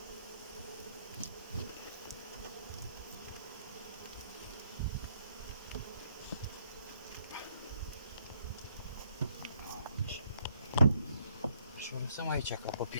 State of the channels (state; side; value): inverted; both; correlation -0.71